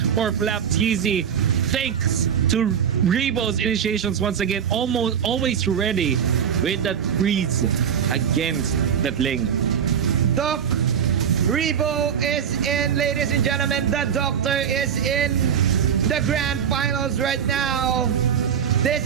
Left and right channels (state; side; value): quieter; left; 8.1 dB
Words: Flap TZ. Thanks to Rebo's initiations once again. Always ready with that freeze against that Ling. Doc Rebo is in, ladies and gentlemen. The Doctor is in the grand finals right now. This